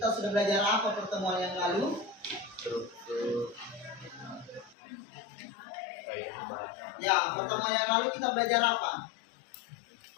sudah belajar apa pertemuan yang lalu? Struktur kaidah bahasa. Ya, pertemuan yang lalu kita belajar apa?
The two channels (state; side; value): drops out; right; at 4.8 s